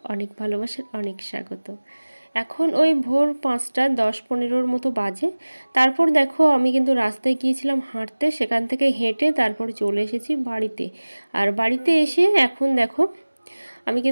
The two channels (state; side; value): inverted; both; correlation -1.00